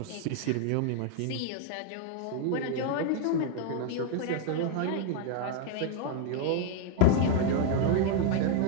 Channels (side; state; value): both; different; correlation 0.00